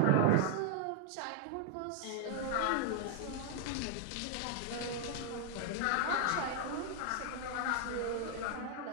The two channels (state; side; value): different; both; correlation 0.00